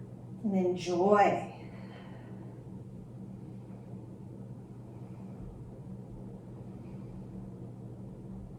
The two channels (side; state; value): both; identical; correlation 1.00